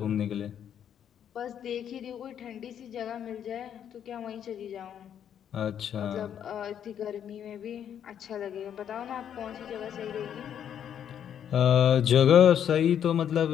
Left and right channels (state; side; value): quieter; right; 9.2 dB